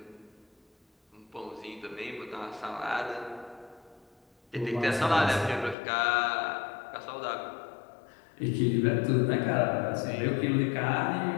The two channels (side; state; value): right; drops out; at 5.8 s